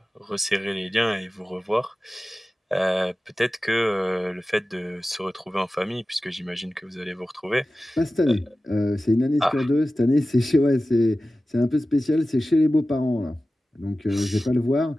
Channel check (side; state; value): both; normal; correlation 0.95